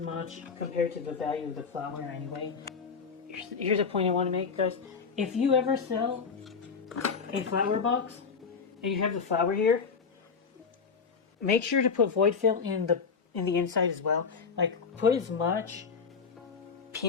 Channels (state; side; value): quieter; right; 5.5 dB